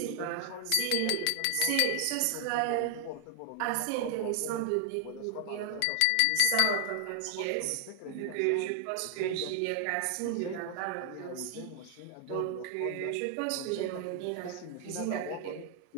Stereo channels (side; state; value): both; different; correlation 0.00